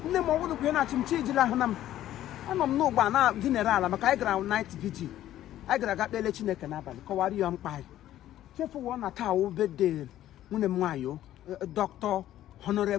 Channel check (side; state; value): right; quieter; 12.9 dB